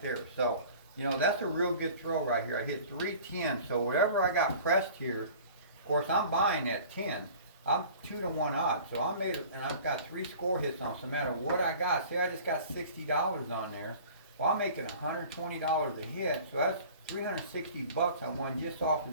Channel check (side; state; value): both; inverted; correlation -0.45